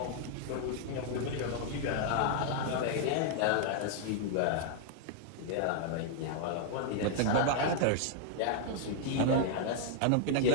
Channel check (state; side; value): different; both; correlation -0.01